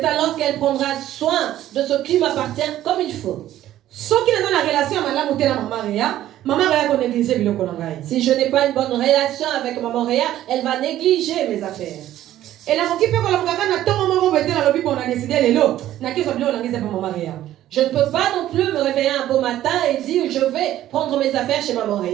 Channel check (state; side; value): quieter; left; 13.1 dB